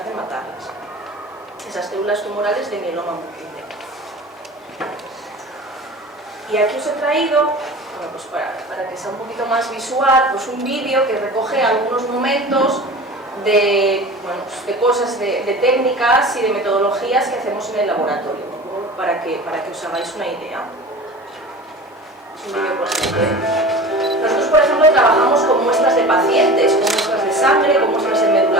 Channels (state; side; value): normal; both; correlation 0.36